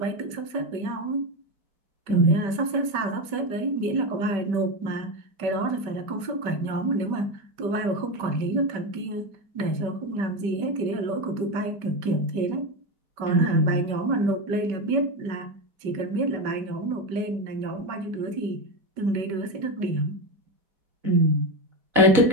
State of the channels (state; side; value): late; left; 5.1 ms